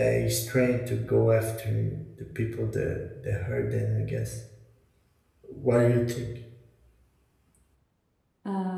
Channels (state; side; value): identical; both; correlation 1.00